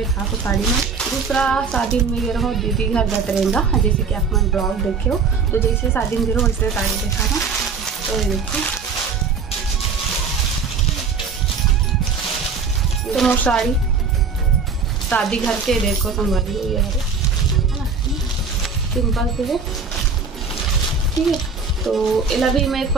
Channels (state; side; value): quieter; left; 5.1 dB